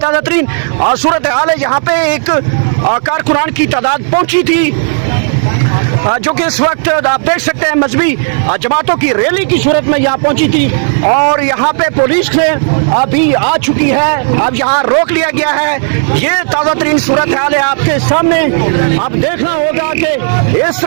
तरीन सूरत हाल है। यहाँ पे एक कारकुनान की तादाद पहुंची थी जो कि इस वक्त आप देख सकते हैं मजहबी जमातों की रैली की सूरत में यहाँ पहुंची थी और यहाँ पे पुलिस ने अभी आ चुकी है। अब यहाँ रोक लिया गया है। ये ताज़ा तरीन सूरत हाल है आपके सामने। आप देखना होगा कि इस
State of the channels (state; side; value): silent; left; digital silence